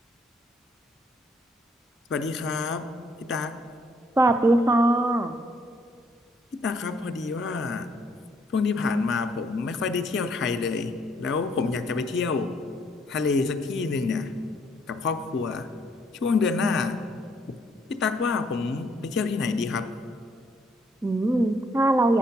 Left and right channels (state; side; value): normal; both; correlation 0.68